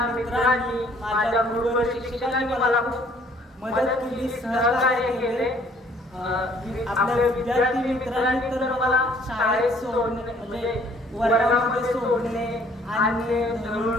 मित्रांनी माझ्या गुरुवर शिक्षकांनी मला खूप मदत केली, सहकार्य केले. आपल्या विद्यार्थी मित्रांनी तर मला शाळेत सोडणे म्हणजे वर्गामध्ये सोडणे आणि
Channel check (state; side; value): normal; both; correlation 0.60